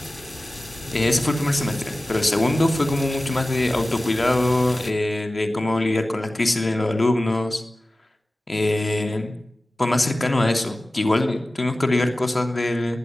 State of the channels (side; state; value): both; normal; correlation 0.96